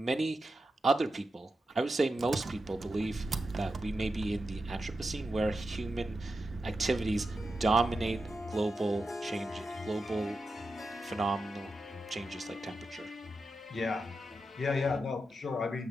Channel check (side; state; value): both; normal; correlation 0.89